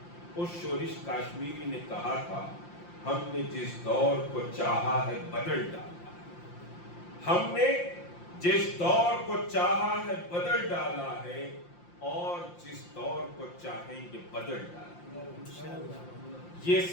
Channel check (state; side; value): late; right; 5.8 ms